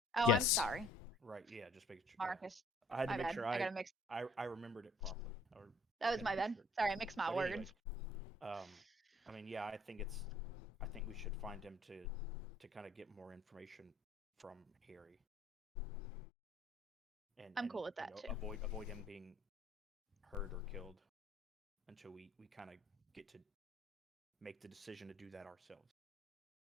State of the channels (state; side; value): normal; both; correlation 0.59